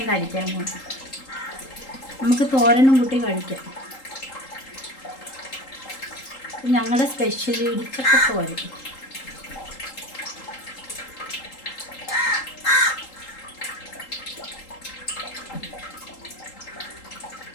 കഴിക്കാൻ പോകും. നമുക്ക് തോരനും കൂട്ടി കഴിക്കാം. ഞങ്ങളുടെ സ്പെഷ്യൽ ഇടിച്ചക്ക തോരൻ.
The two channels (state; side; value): late; right; 3.8 ms